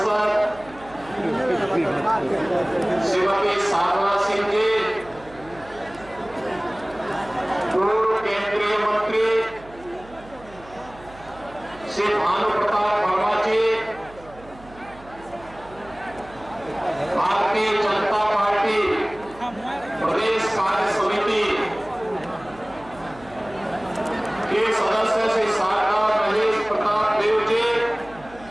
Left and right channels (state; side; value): noise; right; hum, 21 dB below the sound